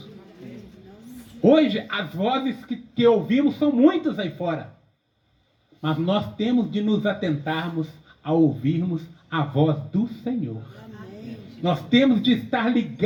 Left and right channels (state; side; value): identical; both; correlation 1.00